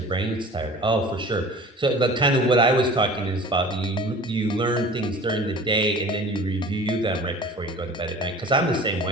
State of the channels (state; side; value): normal; both; correlation 0.42